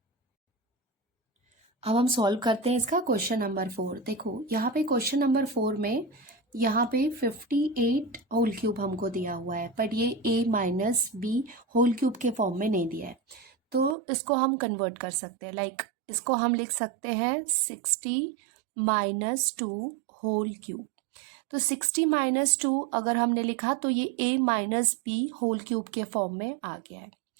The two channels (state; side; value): drops out; left; at 14.0 s